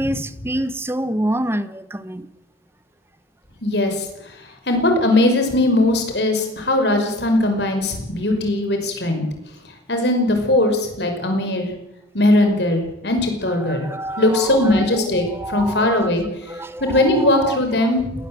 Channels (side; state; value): both; normal; correlation 0.39